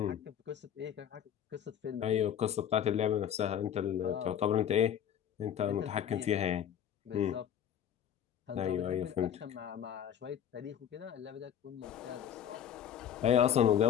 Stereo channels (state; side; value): quieter; right; 9.5 dB